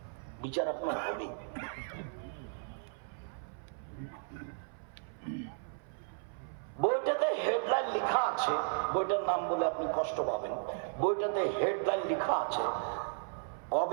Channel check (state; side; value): silent; left; 54 dB below the other